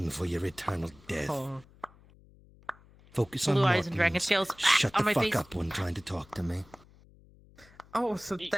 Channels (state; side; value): noise; left; hum, 26 dB below the sound